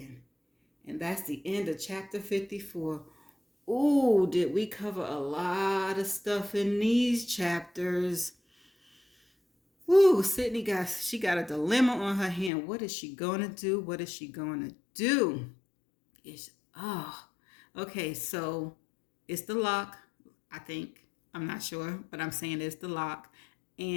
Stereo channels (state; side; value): drops out; right; at 12.5 s